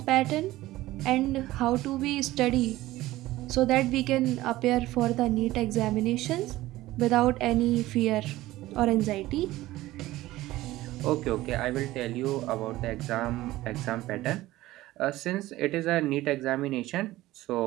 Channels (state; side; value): quieter; left; 16.8 dB